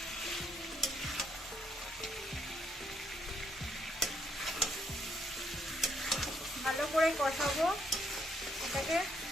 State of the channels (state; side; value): normal; both; correlation 0.73